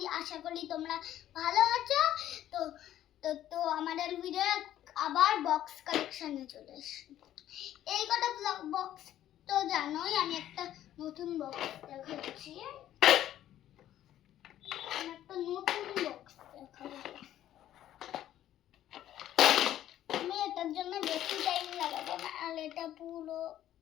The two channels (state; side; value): quieter; right; 12.3 dB